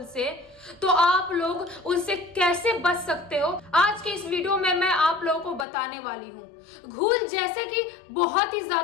से तो आप लोग उनसे कैसे बच सकते हो, आज के इस वीडियो में मैं आप लोगों को बताने वाली हूँ। घूल जैसे कि बहुत ही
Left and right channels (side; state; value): right; drops out; at 5.7 s